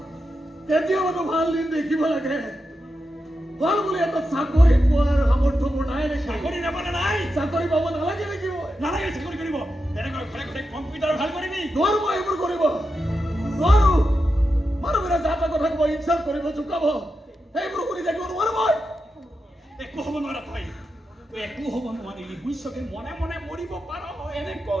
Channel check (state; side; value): normal; both; correlation 0.88